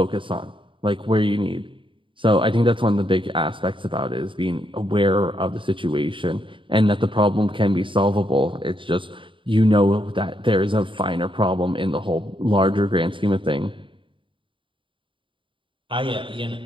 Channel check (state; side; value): late; left; 0.25 ms